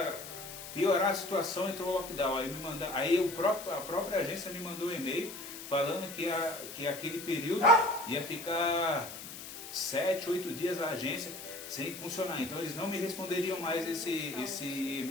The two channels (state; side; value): noise; left; hiss, 11 dB below the sound